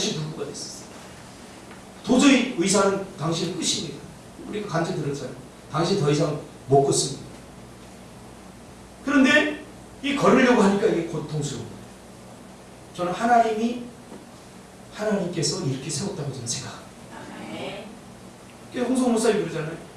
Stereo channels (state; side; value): identical; both; correlation 1.00